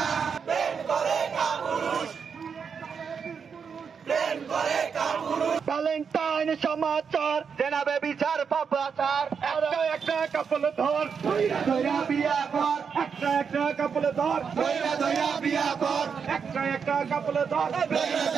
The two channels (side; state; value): left; quieter; 6.3 dB